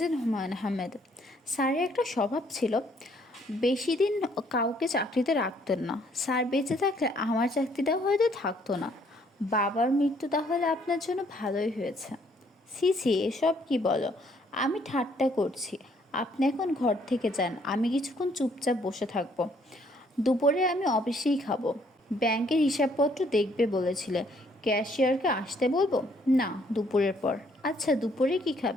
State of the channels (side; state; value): both; normal; correlation 0.66